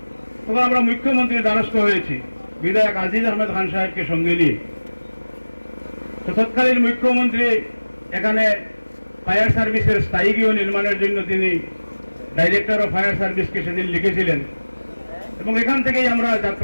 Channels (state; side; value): inverted; both; correlation -1.00